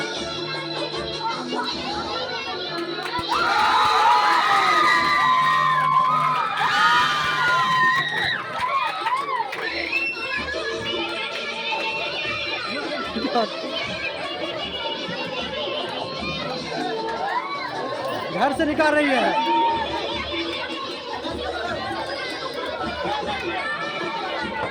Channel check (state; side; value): identical; both; correlation 1.00